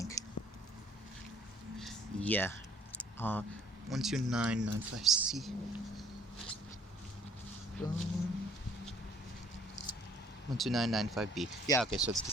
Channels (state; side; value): normal; both; correlation 0.58